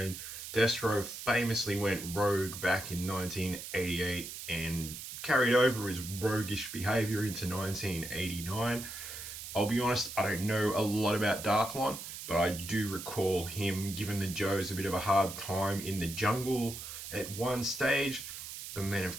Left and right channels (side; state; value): right; noise; hiss, 9 dB below the sound